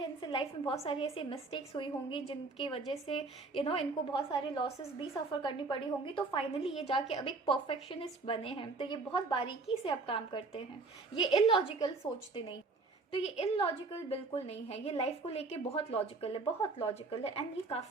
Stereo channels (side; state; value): left; quieter; 3.8 dB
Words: इनसे लाइफ में बहुत सारी ऐसी मिस्टेक्स हुई होंगी जिनकी वजह से इनको बहुत सारे लॉसेस भी सफ़र करनी पड़ी होंगी, तो फाइनली ये जाके अब एक परफेक्शनिस्ट बने हैं। तो ये बहुत बारीकी से अब काम करते हैं, ये इलॉजिकल सोचते नहीं। तो ये इलॉजिकल बिल्कुल नहीं है, ये लाइफ को लेके बहुत लॉजिकल है, बहुत लॉजिकल है। एंड ये